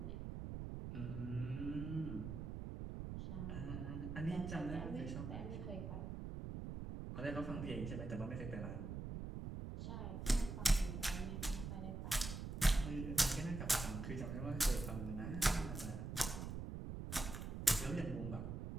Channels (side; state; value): right; noise; rumble, 5 dB below the sound